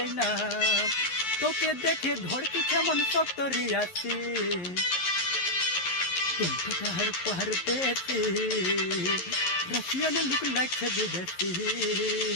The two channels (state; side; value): late; right; 11 ms